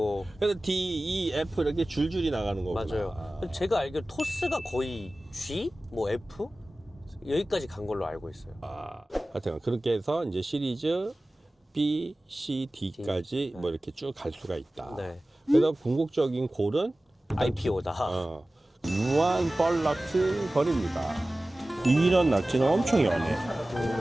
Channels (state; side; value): normal; both; correlation 0.97